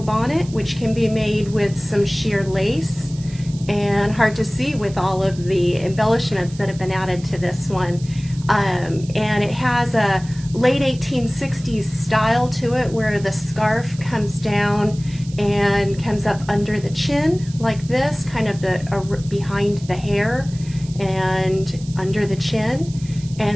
which can be made with some sheer lace, and hard to see with all of the embellishments that have been added to this one. And it has a late 1860s style to it where the scarf comes down and comes up under the chin like this, kind of behind the hair and under the chin.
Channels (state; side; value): noise; right; hiss, 20 dB below the sound